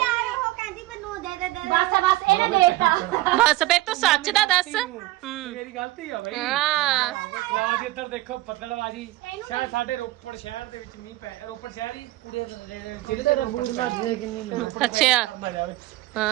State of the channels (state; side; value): quieter; left; 17.6 dB